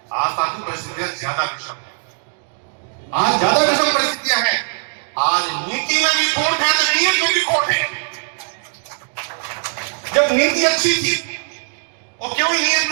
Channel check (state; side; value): silent; left; 62 dB below the other